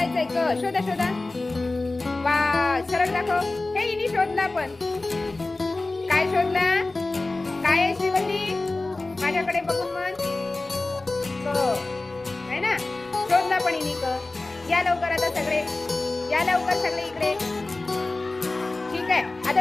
क शोधा शोधा. वा, सरळ दाखव. हे इनी शोधला. पण काय शोधला? काय आहे श्रीवल्ली? माझ्याकडे बघून म्हण. है ना? शोधला पण इनी क. या लवकर आता सगळे, या लवकर सगळे इकडे. ठीक आहे, आता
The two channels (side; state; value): right; quieter; 3.2 dB